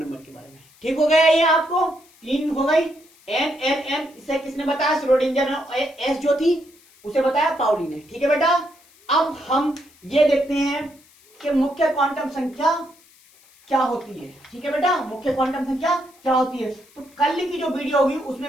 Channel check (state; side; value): noise; left; hiss, 28 dB below the sound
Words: के बारे में। ठीक हो गया, ये आपको 3 हो गई। NLM इसे किसने बताया? श्रोडिंगर ने। एस जो थी उसे बताया पाउली ने। ठीक है बेटा, अब हम ये देखते हैं कि मुख्य क्वांटम संख्या क्या होती है। ठीक है बेटा, मुख्य क्वांटम संख्या क्या होती है। तो कल की जो वीडियो होगी